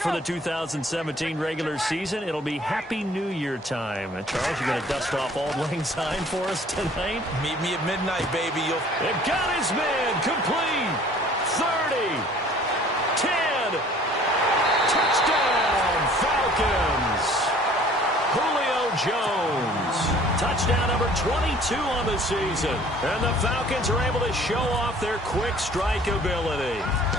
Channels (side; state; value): both; normal; correlation 0.53